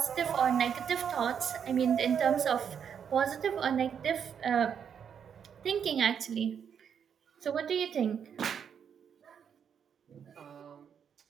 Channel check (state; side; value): quieter; left; 7.7 dB